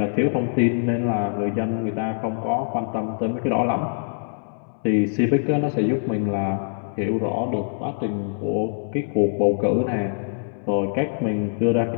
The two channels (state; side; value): silent; right; 63 dB below the other